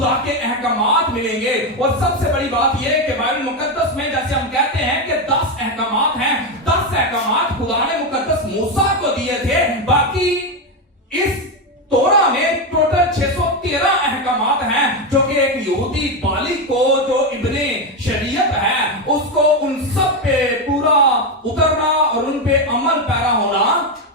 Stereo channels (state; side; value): normal; both; correlation 0.10